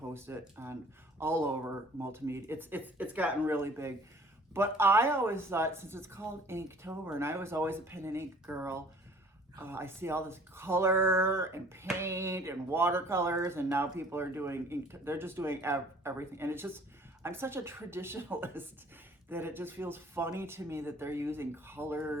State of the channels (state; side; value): normal; both; correlation 0.52